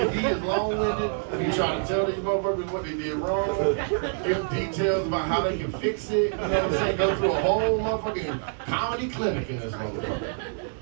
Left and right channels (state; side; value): silent; left; 58 dB below the other